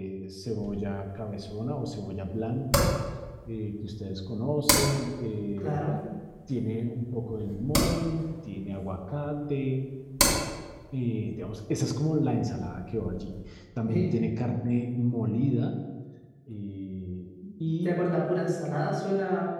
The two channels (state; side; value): identical; both; correlation 1.00